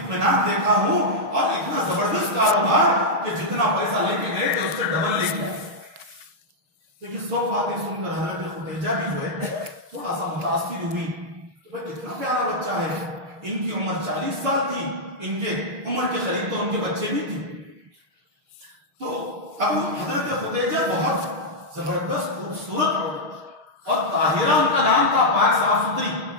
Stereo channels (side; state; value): left; late; 6.4 ms